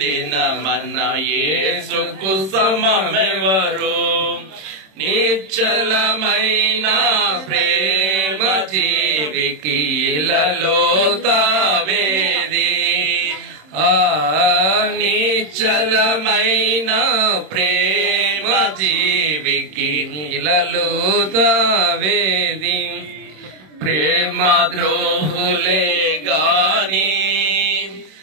మన యేసుకు సమమెవరు? నిశ్చలమైన ప్రేమ జీవికి ఇలలో తావేది. నిశ్చలమైన ప్రేమ జీవికి ఇలలో తావేది. ప్రేమ ద్రోహులే గాని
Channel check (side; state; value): left; late; 27 ms